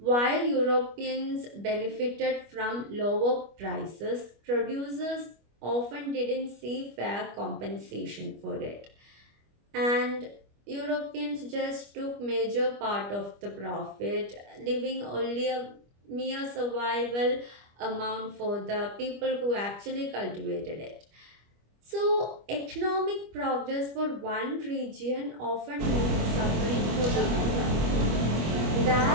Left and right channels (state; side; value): late; left; 25 ms